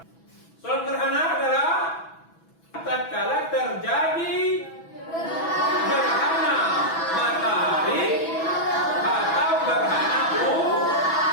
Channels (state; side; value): late; right; 6.1 ms